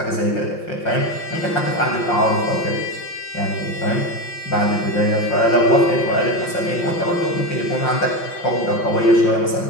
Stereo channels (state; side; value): late; right; 5.7 ms